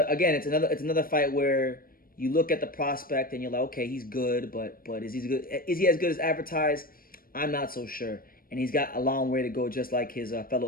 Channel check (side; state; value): right; late; 0.42 ms